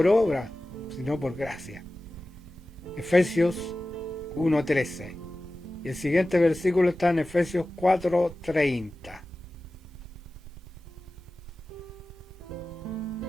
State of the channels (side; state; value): both; normal; correlation 0.96